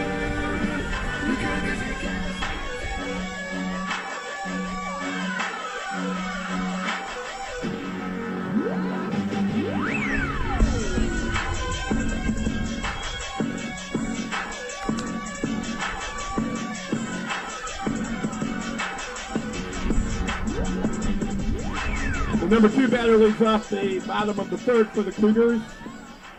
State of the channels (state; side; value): identical; both; correlation 1.00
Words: You could be The number 2 batter leads off the bottom of the third for the Cougars.